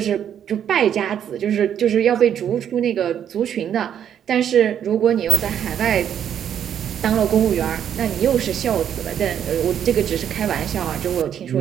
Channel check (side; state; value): left; quieter; 9.3 dB